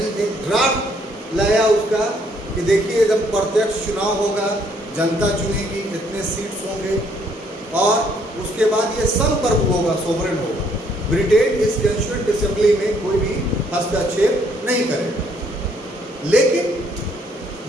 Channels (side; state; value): both; normal; correlation 0.67